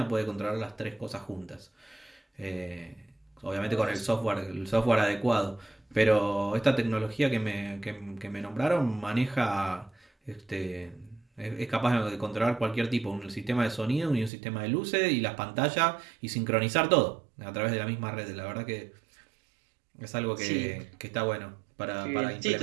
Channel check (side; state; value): left; drops out; at 14.3 s